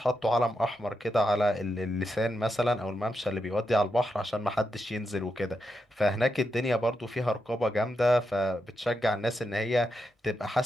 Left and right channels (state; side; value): normal; both; correlation 0.85